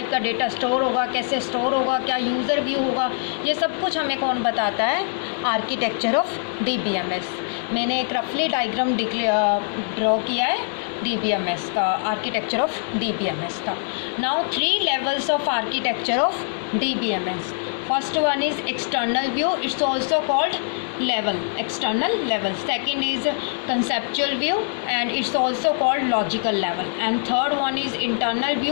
का data store होगा, कैसे store होगा, क्या यूज़र व्यू होगा, ये सब कुछ हमें कौन बताता है? Architecture of DBMS. मैंने एक रफली डायग्राम ड्रॉ किया है DBMS का, आर्किटेक्चर ऑफ DBMS का. Now 3 levels of architecture of DBMS. First one is external view, it's also called level, external level. Second is conceptual view and it's also called logical level, and third one is internal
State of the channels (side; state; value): right; silent; digital silence